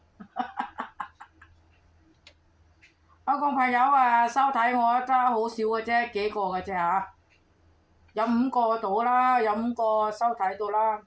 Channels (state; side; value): identical; both; correlation 1.00